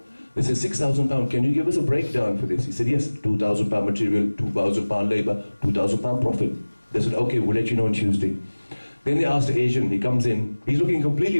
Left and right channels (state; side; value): inverted; both; correlation -1.00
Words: They said, £6,000, can you give us a breakdown for this? He said, yes, £2,000 material, £2,000 labour, £2,000 profit. They said, okay, we'll let you know on Tuesday. Then they asked the Asian, he comes in, he's looking completely